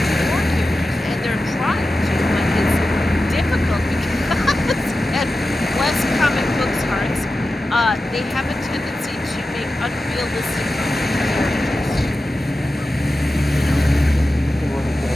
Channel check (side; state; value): both; normal; correlation 0.93